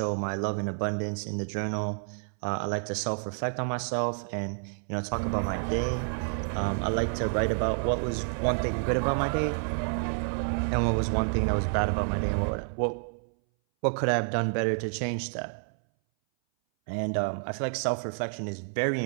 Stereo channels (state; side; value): silent; left; 58 dB below the other